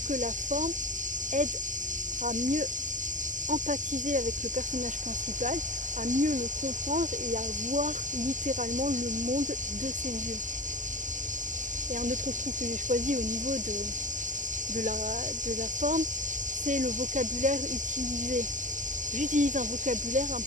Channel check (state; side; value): late; left; 0.37 ms